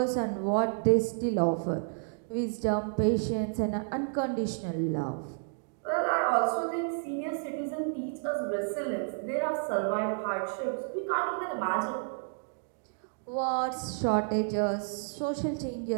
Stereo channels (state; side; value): silent; left; digital silence